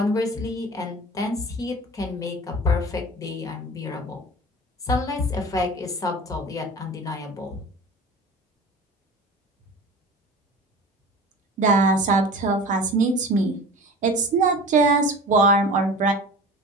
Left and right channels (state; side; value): normal; both; correlation 0.37